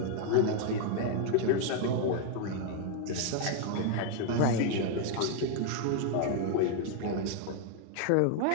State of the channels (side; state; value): both; different; correlation 0.00